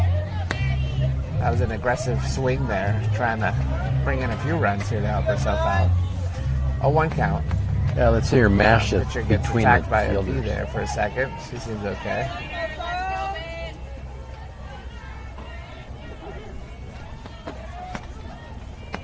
That was an aggressive swing there, trying to bring in a few runs here to help herself out. A 1 count. Yeah, let's see her mash it Pitcher gets between attacked the by a fielders. bee there for a second. She seems okay.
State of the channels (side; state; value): both; identical; correlation 1.00